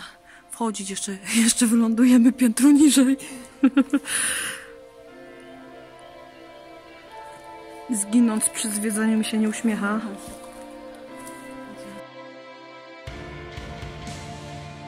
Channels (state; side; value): identical; both; correlation 1.00